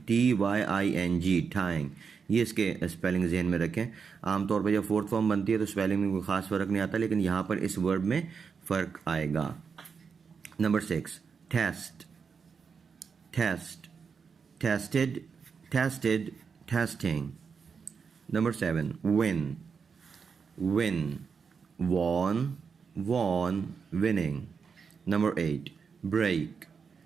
TYING, टाइंग, ये इसके स्पेलिंग जहन में रखें। आमतौर पर जब फोर्थ फॉर्म बनती है तो स्पेलिंग में कोई ख़ास फ़र्क नहीं आता, लेकिन यहाँ पर इस वर्ड में फ़र्क आएगा। Number 6 test, test, tested, tested, testing. Number 7 win, win, won, won, winning. Number 8 break,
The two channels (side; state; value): left; quieter; 5.9 dB